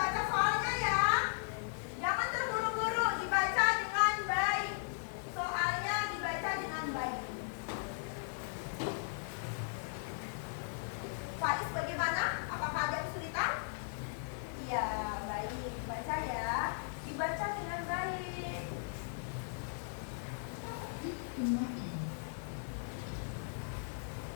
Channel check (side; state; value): right; silent; 53 dB below the other